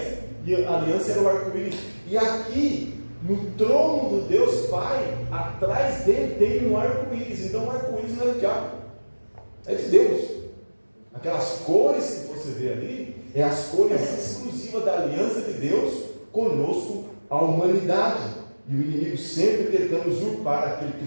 e a aliança era o arco-íris. E aqui, no trono do Deus Pai, atrás dele tem um arco-íris. Então o arco-íris não é do diabo, é de Deus. Aquelas cores que você vê ali, é as cores exclusivas da aliança de Deus conosco, a humanidade. E o inimigo sempre tentando usurpar aquilo que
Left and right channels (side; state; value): both; inverted; correlation -1.00